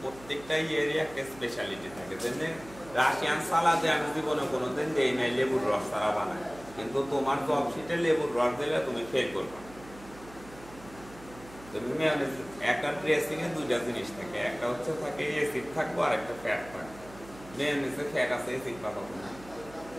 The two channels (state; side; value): noise; right; hum, 19 dB below the sound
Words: প্রত্যেকটা ইয়েরই একটা স্পেশালিটি থাকে। যেমন রাশিয়ান সালাদে আমি জীবনে কোনোদিন দেই নাই লেবুর রস ছাড়া বানাই, কিন্তু তোমার জব শিটে লেবুর রস দিলে তুমি ফেল করবে। তুমি একটা ড্রেসিং এ 2টা জিনিস থাকে, একটা হচ্ছে থাকে এসিড থাকবো আর একটা ফ্যাট থাকবে। মেয়োনিজে ফ্যাট আছে, এসিড পাবো না।